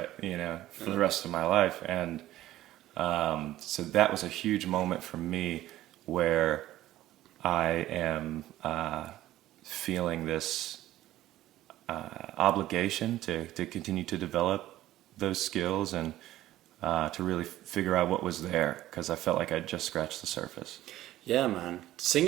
you know, for the rest of my life. And so that was a huge moment for me where I am feeling this obligation to continue to develop those skills and to really figure out what was there, because I felt like I'd just scratched the surface. Yeah, man.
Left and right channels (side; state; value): left; quieter; 14.7 dB